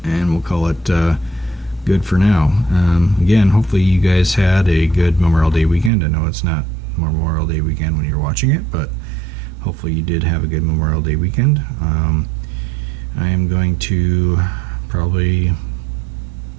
and we'll call it good for now. Again, hopefully you guys had a good Memorial Day weekend. I know it's not Memorial Day weekend when you're watching it, but hopefully you did have a good Memorial Day weekend. I am going to probably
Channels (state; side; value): drops out; left; at 5.9 s